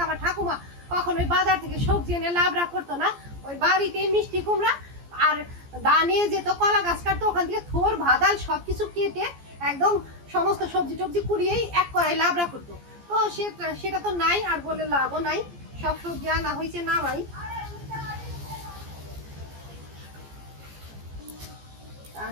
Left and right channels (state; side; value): late; left; 14 ms